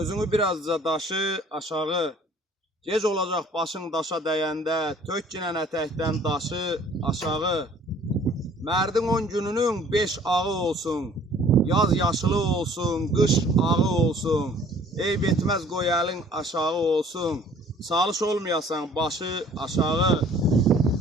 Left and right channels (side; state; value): both; normal; correlation 0.54